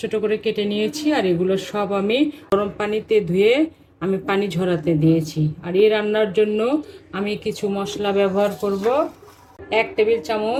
ছোট করে কেটে নিয়েছি, আর এগুলো সব আমি গরম পানিতে ধুয়ে আমি পানি ঝরাতে দিয়েছি। আর এই রান্নার জন্য আমি কিছু মশলা ব্যবহার করব। 1 টেবিল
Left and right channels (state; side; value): identical; both; correlation 1.00